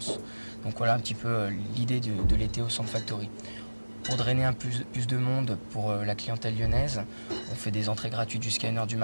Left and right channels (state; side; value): inverted; both; correlation -1.00